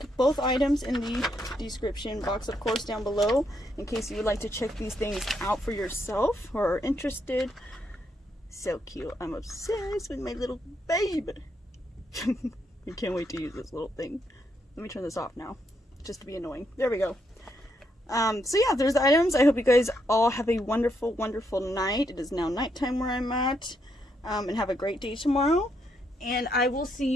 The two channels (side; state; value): both; normal; correlation 0.77